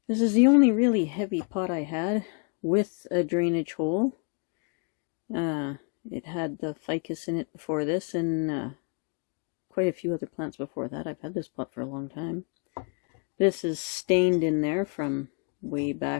this is the only really heavy pot I had with a drainage hole. It had the ficus in it before this, and quite a few other plants before that. I've had this pot for a long time. This is stained in there from way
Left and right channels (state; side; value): quieter; right; 38.8 dB